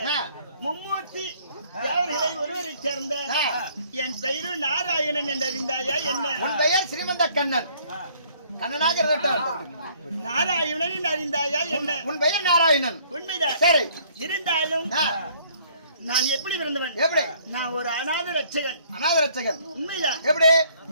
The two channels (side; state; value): both; inverted; correlation -0.61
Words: மும்மூர்த்தி தேவர்களை ஒருவரை சேர்ந்த என் பெயரு நாராயணன் என்று அறிந்தாயா என்ன? உன் பெயர் ஸ்ரீமந்த கண்ணன். கண்ணனாக இருக்கட்டும். நாராயணன் என்று அறிந்தாயா என்ன? உன் பெயர் நாராயணன். உண்மைதான். சரி, இருந்தாலும் நான் எப்படி பிறந்தவன்? எப்படி? நான் ஒரு அநாத ரட்சகன். அநாத ரட்சகன். உண்மைதான். எப்படி?